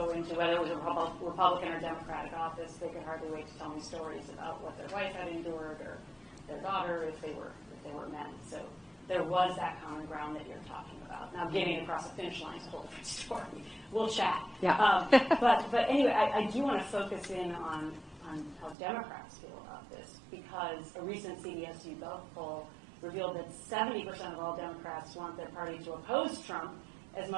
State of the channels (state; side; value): drops out; left; at 18.8 s